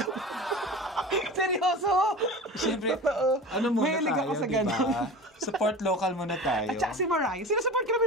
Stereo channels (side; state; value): both; normal; correlation 0.34